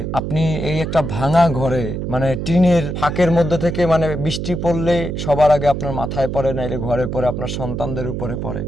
আপনি এই একটা ভাঙা ঘরে মানে টিনের ফাঁকের মধ্যে থেকে মানে বৃষ্টি পড়লে সবার আগে আপনার মাথায় পড়ে, নাইলে ঘরে পড়ে, আপনার সন্তানদের উপরে পড়ে,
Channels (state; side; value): noise; right; hum, 4 dB below the sound